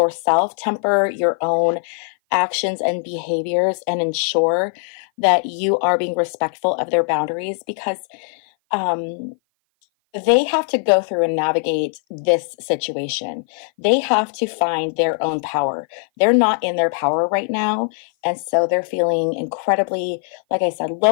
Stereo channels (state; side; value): silent; right; 56 dB below the other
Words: temper your own actions and behaviors, and ensure that you are being respectful of their boundaries, because they have to go through and navigate this situation. They have to find their own power. They're not in their power right now. And so they're feeling incredibly, like I said,